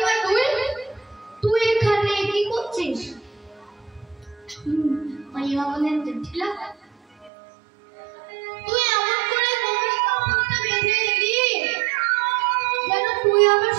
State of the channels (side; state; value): left; drops out; at 7.3 s